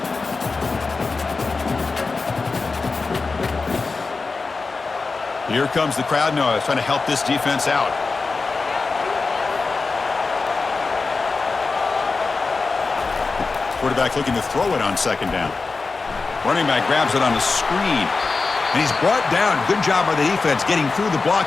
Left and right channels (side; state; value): right; quieter; 4.1 dB